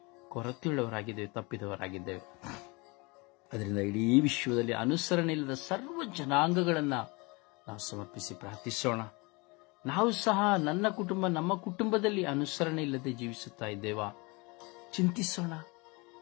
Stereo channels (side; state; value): right; quieter; 27.1 dB